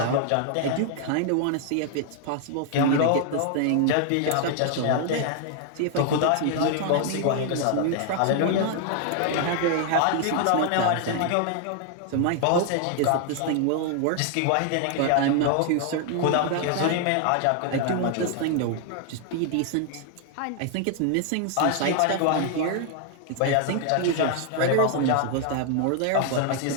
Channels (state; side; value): different; both; correlation 0.00